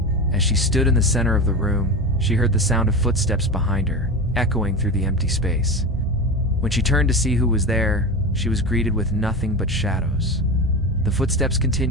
As she stood in the center of the room, she heard the sound of footsteps behind her, echoing through the empty space. When she turned to see who was there, she was greeted with nothing but shadows. The footsteps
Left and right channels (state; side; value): normal; both; correlation 0.25